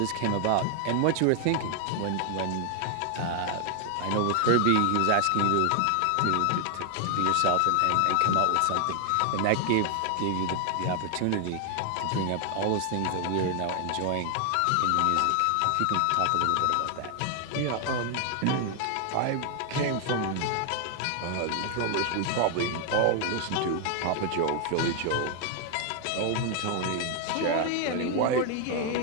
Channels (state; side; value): different; both; correlation 0.00